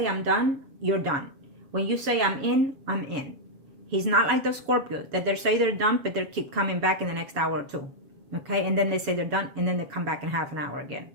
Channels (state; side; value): late; left; 7.1 ms